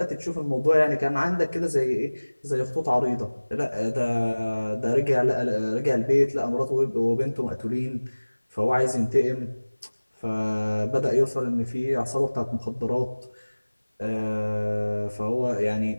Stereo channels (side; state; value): both; inverted; correlation -1.00